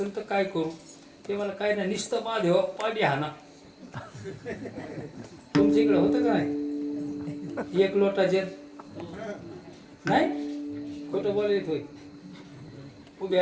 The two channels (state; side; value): identical; both; correlation 1.00